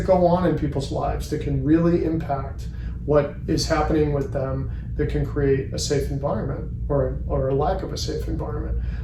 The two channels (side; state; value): both; identical; correlation 1.00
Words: go on in people's lives that can really impact what is happening with them, that can create a safe environment or a lack of a safe environment.